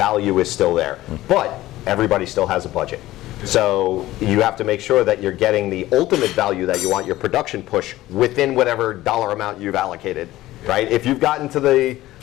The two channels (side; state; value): right; quieter; 16.1 dB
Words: is still there. But everybody still has a budget. So you have to make sure that you're getting the ultimate value that you want, your production push, within whatever dollar amount you've allocated, right? If you've gotten to the